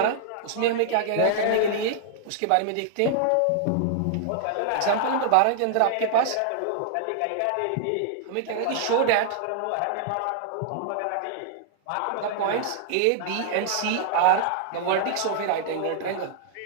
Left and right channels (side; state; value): both; different; correlation -0.01